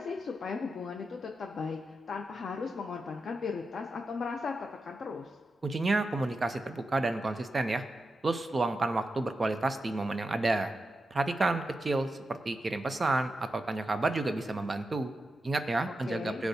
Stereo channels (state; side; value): normal; both; correlation 0.89